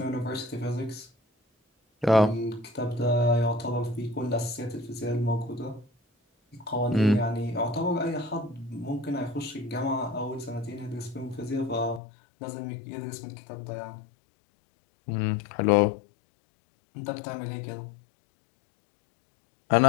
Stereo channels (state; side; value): drops out; right; at 12.0 s